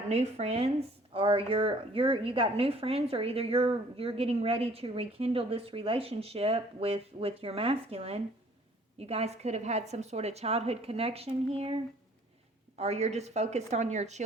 new friends, or you got new friends, or either you're getting ready to rekindle this relationship with your masculine. You guys could have had some sort of childhood connection here, or you're just focused on your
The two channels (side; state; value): both; normal; correlation 0.56